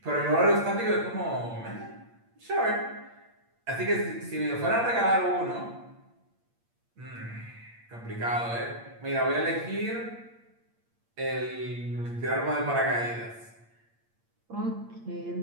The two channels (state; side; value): late; left; 8.7 ms